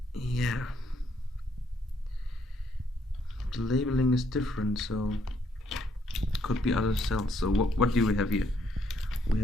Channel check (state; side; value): normal; both; correlation 0.71